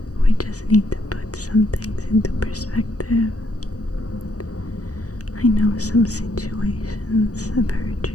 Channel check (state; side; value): late; right; 0.67 ms